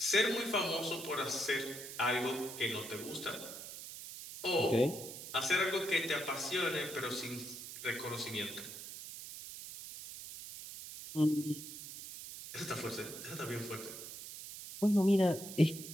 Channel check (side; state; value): right; noise; hiss, 11 dB below the sound